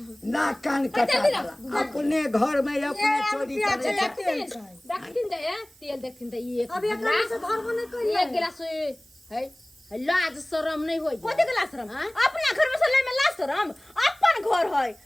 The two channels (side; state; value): right; noise; hiss, 27 dB below the sound